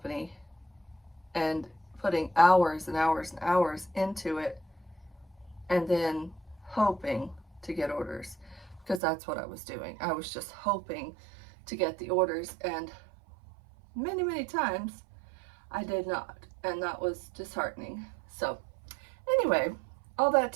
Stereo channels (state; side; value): drops out; left; at 9.0 s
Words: and putting hours and hours and hours into it and then hoping to get orders, because that's what I was doing. I was just hoping to get the orders, and many times I did not, and that was disheartening. So anyway, all that